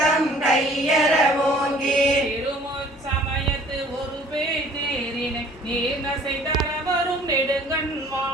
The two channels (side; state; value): both; normal; correlation 0.53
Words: கையற ஓங்கி திருமுச் சமயத்து ஒரு அசை தர வரும் நெடுங்கண்